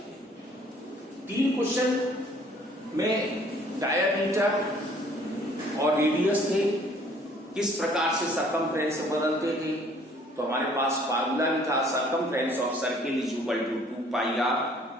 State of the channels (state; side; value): normal; both; correlation 0.58